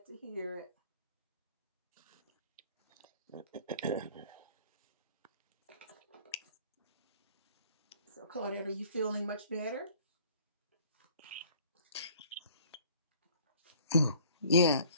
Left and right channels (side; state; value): both; inverted; correlation -0.53